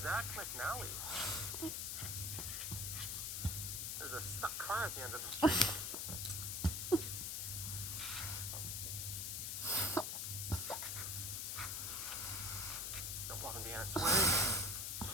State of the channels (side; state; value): left; noise; hiss, 2 dB below the sound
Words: Zach McNally. There's a stuck car at the end of the street. Don't want to be in its way.